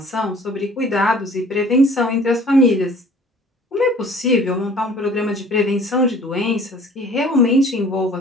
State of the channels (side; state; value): both; normal; correlation 0.50